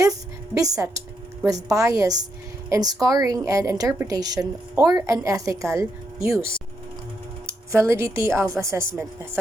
beset with bias in scoring and interpretation or unethical use. Validity of assessment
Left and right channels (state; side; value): normal; both; correlation 0.80